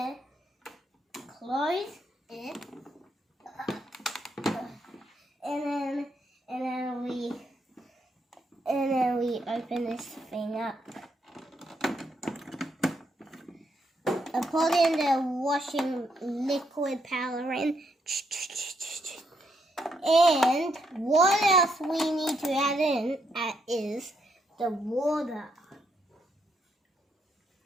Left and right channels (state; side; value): normal; both; correlation 0.77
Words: close it, and then we open this thing up. I put in the washing liquid powder in. And what else we need to add in is the water.